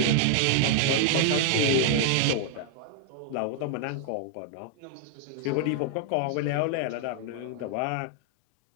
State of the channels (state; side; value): different; both; correlation -0.01